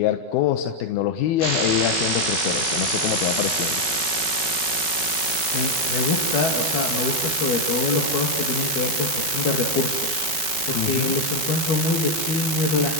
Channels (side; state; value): right; late; 12 ms